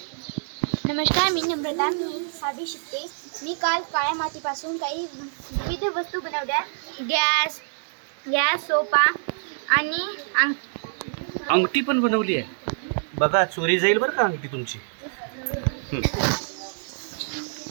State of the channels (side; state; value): left; silent; digital silence